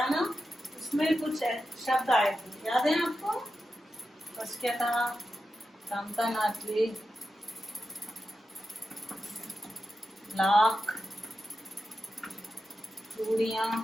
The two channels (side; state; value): both; normal; correlation 0.90